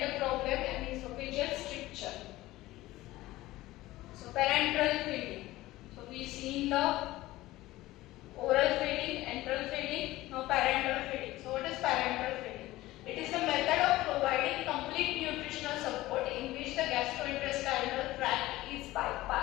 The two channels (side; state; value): right; quieter; 17.4 dB